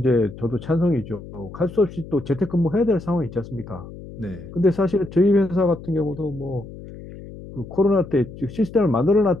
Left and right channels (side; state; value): left; noise; hum, 15 dB below the sound